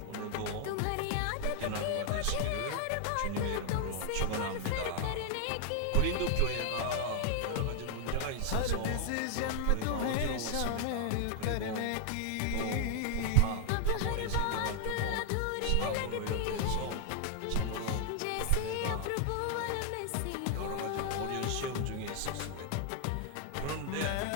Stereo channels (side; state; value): both; different; correlation 0.00